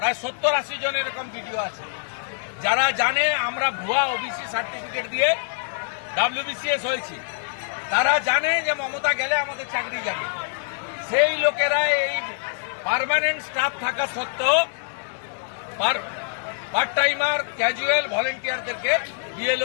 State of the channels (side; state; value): right; silent; digital silence